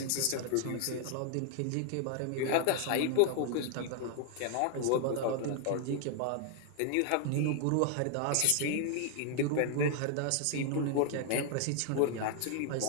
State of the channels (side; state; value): both; different; correlation 0.00